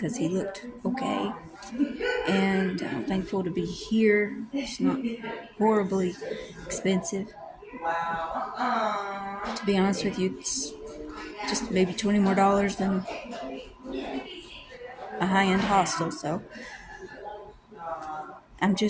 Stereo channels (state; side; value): identical; both; correlation 1.00